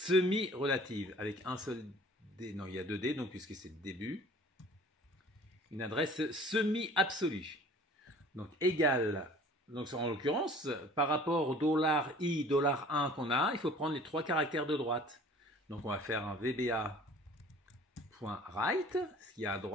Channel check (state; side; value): normal; both; correlation 0.48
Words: avec un seul D. Non, il y a deux D, donc puisque c'est début. Une adresse semi-absolue. Donc égale. Donc en l'occurrence, par rapport au $i, $1 qu'on a, il faut prendre les trois caractères de droite. Donc on va faire un VBA.right, ce qu'il y a à